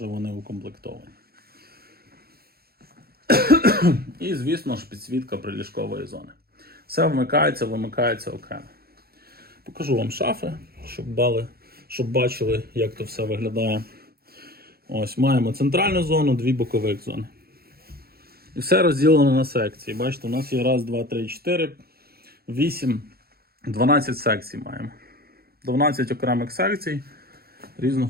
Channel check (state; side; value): late; left; 0.45 ms